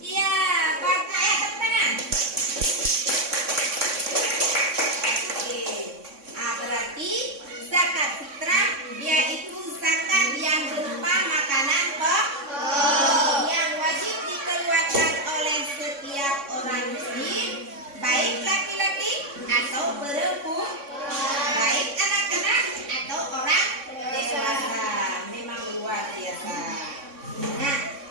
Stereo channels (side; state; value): left; late; 3.6 ms